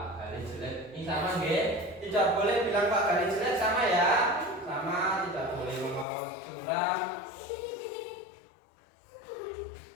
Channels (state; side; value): drops out; right; at 6.1 s